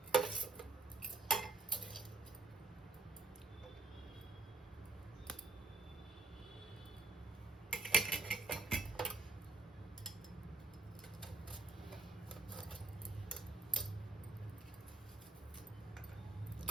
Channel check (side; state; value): left; quieter; 3.5 dB